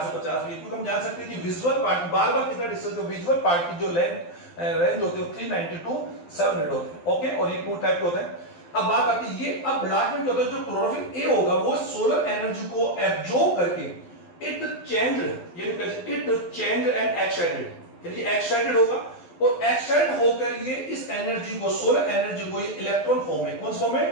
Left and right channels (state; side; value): late; right; 12 ms